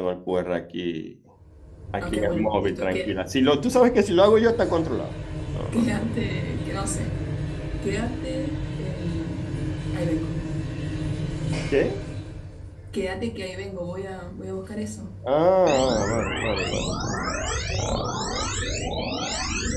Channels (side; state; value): both; identical; correlation 1.00